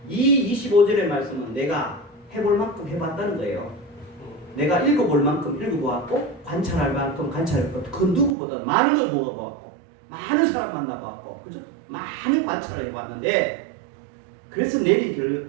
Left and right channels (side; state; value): left; drops out; at 8.3 s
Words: 이 25절의 말씀은 내가 해볼 만큼 해봤다는 거예요. 내가 읽어볼 만큼 읽어보았고 관찰할 만큼 관찰했고 그 누구보다 많은 걸 먹어보았고 많은 사람 만나보았고 그죠? 많은 관찰을 해봤는데 그래서 내린